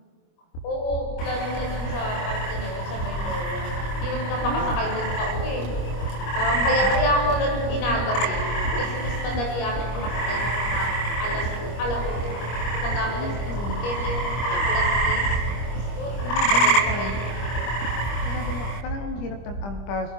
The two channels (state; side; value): late; right; 25 ms